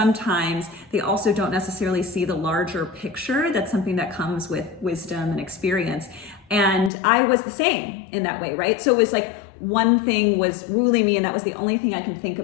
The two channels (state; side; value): drops out; right; at 6.9 s